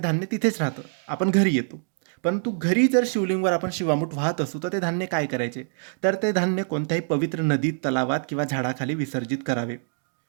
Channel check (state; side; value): silent; left; digital silence